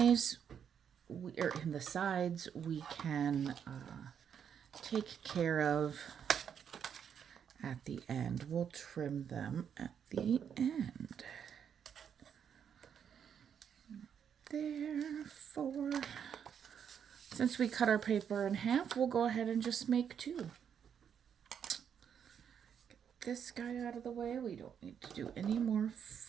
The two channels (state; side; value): quieter; left; 8.0 dB